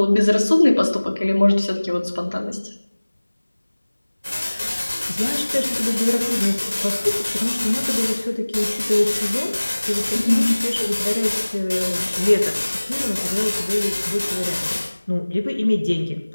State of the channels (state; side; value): inverted; both; correlation -1.00